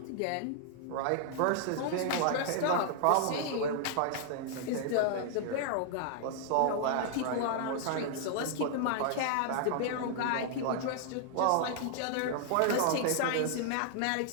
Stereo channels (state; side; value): different; both; correlation 0.00